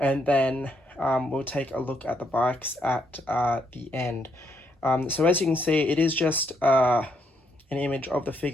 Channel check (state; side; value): normal; both; correlation 0.75